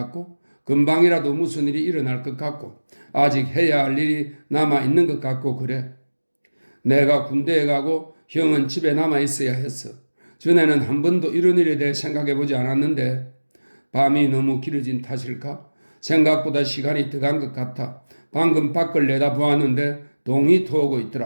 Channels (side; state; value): both; inverted; correlation -1.00